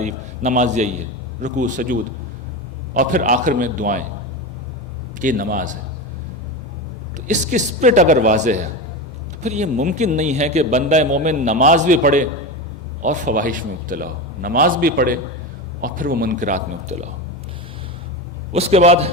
نماز یہی ہے، رکوع سجود، اور پھر آخر میں دعائیں، یہ نماز ہے۔ تو اس کی اسپرٹ اگر واضح ہے تو پھر یہ ممکن نہیں ہے کہ بندہ مومن نماز بھی پڑھے اور فواحش میں مبتلا ہو، نماز بھی پڑھے اور پھر وہ منکرات میں مبتلا ہو۔ اس کے بعد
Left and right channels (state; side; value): normal; both; correlation 0.21